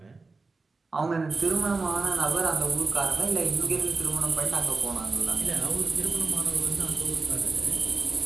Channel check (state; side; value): quieter; left; 3.9 dB